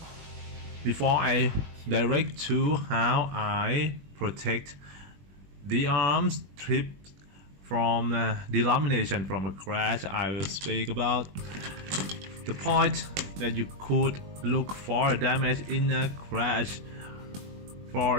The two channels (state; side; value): late; left; 21 ms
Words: Before I direct to how I protect the arm strip from de-lamination from a crash, I will speak about the point that you could look for damage in a crash. For